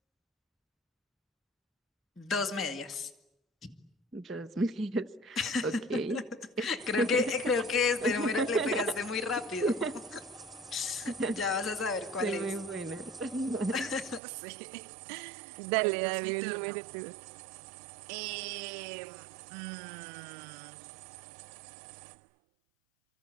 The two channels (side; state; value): left; drops out; at 14.2 s